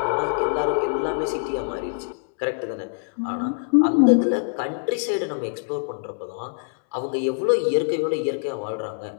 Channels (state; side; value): silent; right; 63 dB below the other